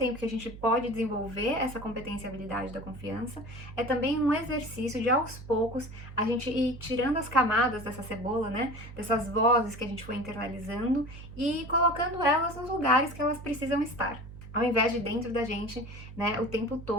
que a gente pode desenvolver essa competência e habilidade da confiança, é também um exercício de aos poucos a gente ir tirando as camadas dessa cebola, né? Dessas vozes que a gente foi internalizando e colocando elas nos lugares que elas precisam estar. Ao invés de dentro da gente, né, o tempo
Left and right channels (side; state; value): right; noise; hum, 14 dB below the sound